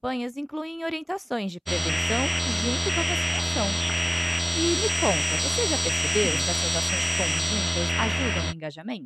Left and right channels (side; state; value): both; identical; correlation 1.00